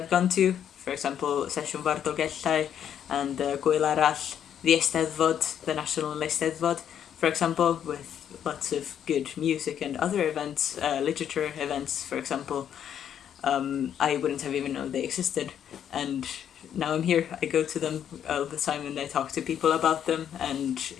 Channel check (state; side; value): quieter; right; 9.3 dB